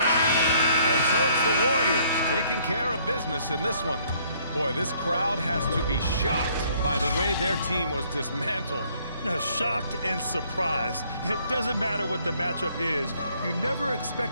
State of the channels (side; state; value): both; inverted; correlation -0.64